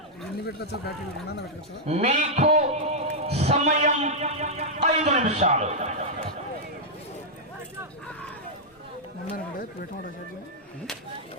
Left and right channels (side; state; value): both; normal; correlation -0.06